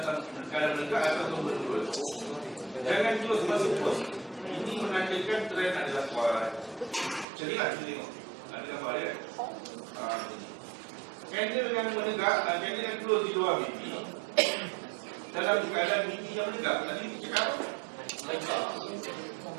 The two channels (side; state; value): left; drops out; at 7.2 s